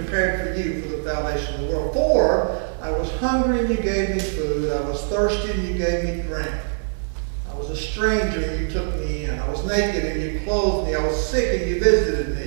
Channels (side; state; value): left; silent; 59 dB below the other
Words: for you from the foundation of the world. For I was hungry, and you gave me food. I was thirsty, and you gave me drink. I was a stranger, and you took me in. I was naked, and you clothed me. I was sick, and you visited